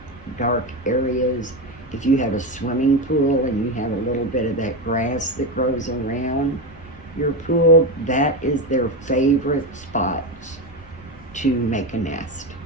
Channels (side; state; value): both; normal; correlation 0.15